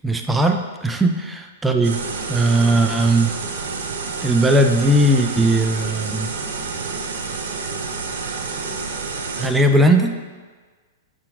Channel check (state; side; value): normal; both; correlation 0.52